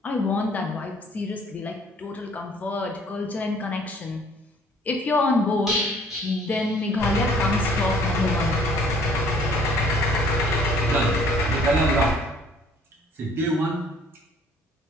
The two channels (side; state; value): both; normal; correlation 0.57